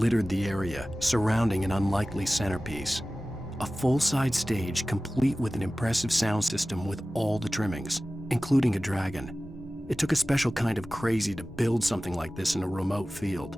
the area, surrounding an unlikely centerpiece. A full-size stage complete with an impressive sound system with all the trimmings, including a dragon. It took a special kind of crazy to build something like this in a remote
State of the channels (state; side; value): normal; both; correlation 0.96